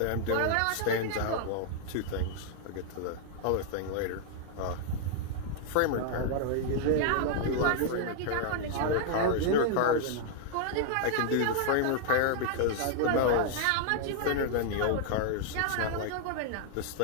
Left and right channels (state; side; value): different; both; correlation -0.01